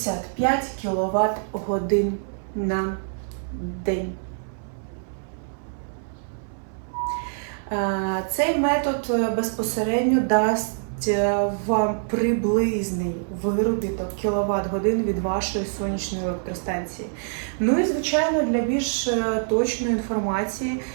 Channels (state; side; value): silent; left; 62 dB below the other